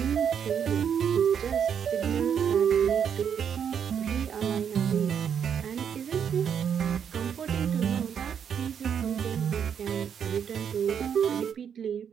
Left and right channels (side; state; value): left; quieter; 7.9 dB